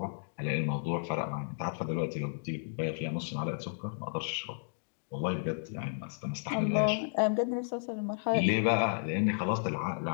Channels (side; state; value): right; silent; digital silence